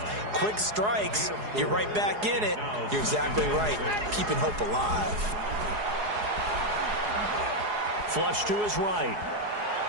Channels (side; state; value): left; late; 4.8 ms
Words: Quick strikes, you're right back in it. You're exactly right. Keeping hope alive. Flush to his right.